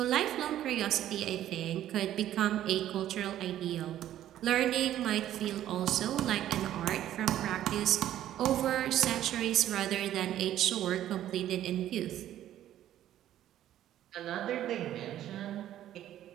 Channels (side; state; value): left; quieter; 12.2 dB